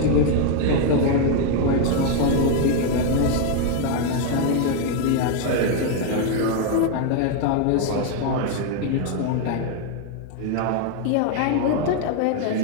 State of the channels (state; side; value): different; both; correlation 0.00